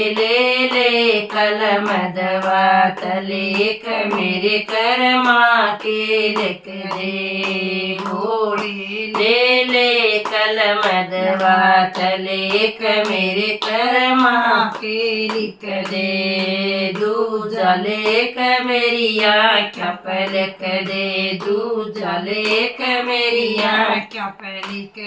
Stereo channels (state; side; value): identical; both; correlation 1.00